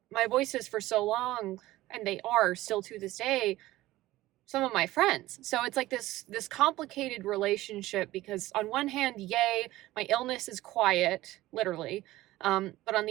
my voices for so long, and they are still to this day, some of my friends. So it's like this complicated relationship because on one hand, yay, my illness is quiet, literally. But on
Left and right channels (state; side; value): quieter; left; 16.9 dB